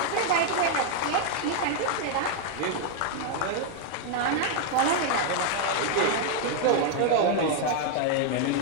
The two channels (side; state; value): both; different; correlation 0.00